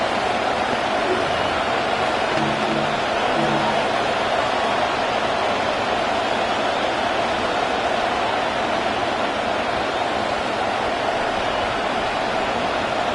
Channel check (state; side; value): identical; both; correlation 1.00